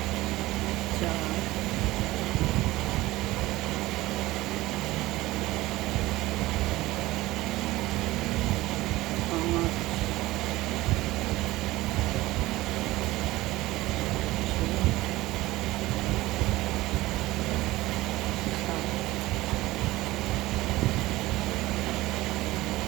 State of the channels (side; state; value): left; quieter; 18.2 dB